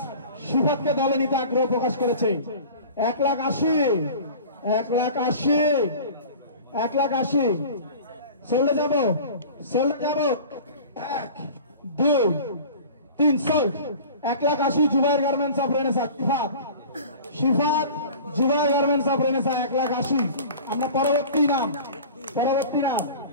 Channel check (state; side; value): inverted; both; correlation -0.40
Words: শিবাদকে দলে নিতে আগ্রহ প্রকাশ করেছে। 1,80,000, 1,80,000, 1,80,000 চলে যাবো 1, 2, 3 sold. 1,80,000 Zubair garments of Renaissance, Shifat Zubair garments of Renaissance 1,80,000। আমরা পরবর্তী নাম